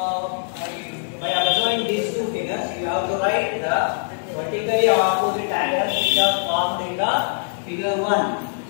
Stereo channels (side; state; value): right; silent; digital silence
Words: by observing these two figures, you have to write the vertically opposite angles which are formed in the figure 1.